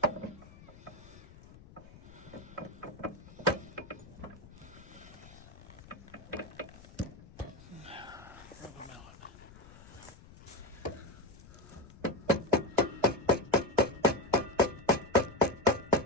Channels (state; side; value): noise; left; rumble, 20 dB below the sound